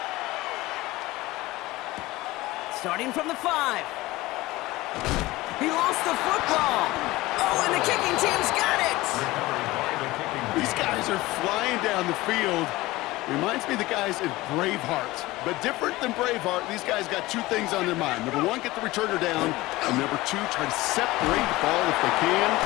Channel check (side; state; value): right; quieter; 19.2 dB